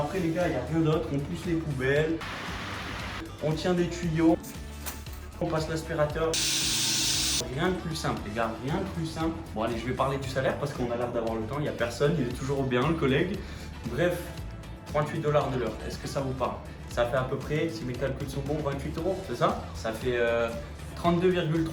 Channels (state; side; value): identical; both; correlation 1.00